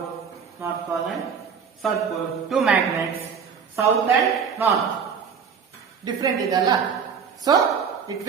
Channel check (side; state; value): left; quieter; 6.5 dB